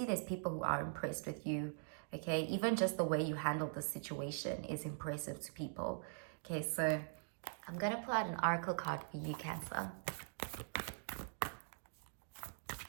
there's people who are impressed with you. Okay, even just the way you handled the situation is impressive to people. Okay, so I'm going to pull out an oracle card for you, Cancer.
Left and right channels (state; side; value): silent; left; digital silence